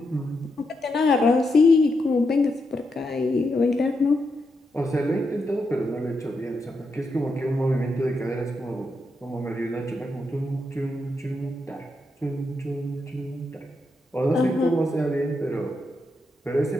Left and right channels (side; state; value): both; normal; correlation 0.83